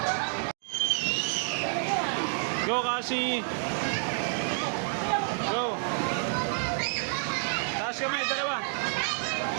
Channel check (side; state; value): left; silent; 58 dB below the other